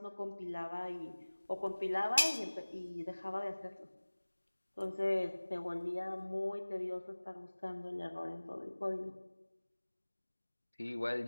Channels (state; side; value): inverted; both; correlation -1.00